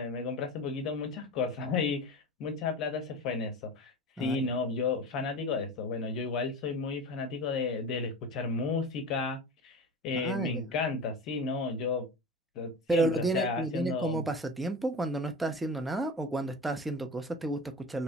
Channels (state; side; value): normal; both; correlation 0.31